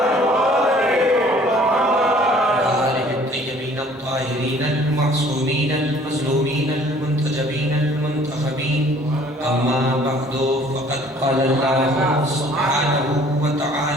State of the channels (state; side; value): normal; both; correlation 0.55